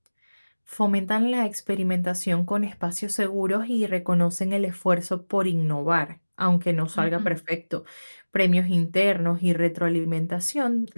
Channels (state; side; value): inverted; both; correlation -1.00